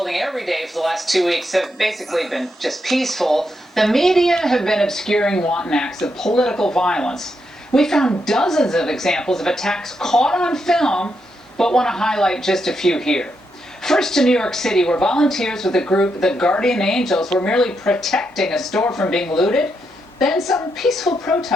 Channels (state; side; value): normal; both; correlation 0.82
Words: every day for the last 2 weeks have basically been just peaceful, the media have been obscuring wanton acts of political violence. We found dozens of examples of attacks caught on film, but want to highlight just a few here. First to New York City, where volunteers with the group The Guardian Angels were merely protecting a store from being looted. Then some peaceful